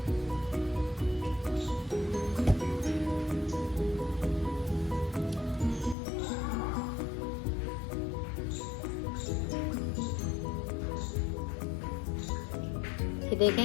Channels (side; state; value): right; drops out; at 6.0 s